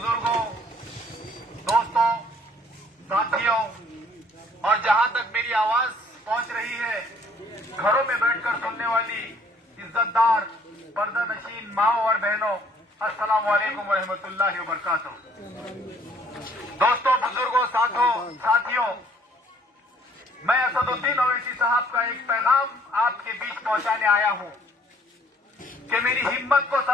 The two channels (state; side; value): normal; both; correlation 0.60